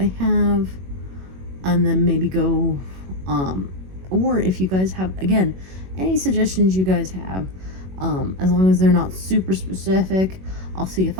have and then maybe go or if you guys have, again, any suggestions you guys have, as long as they're not super specific, I'll see if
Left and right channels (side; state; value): left; late; 21 ms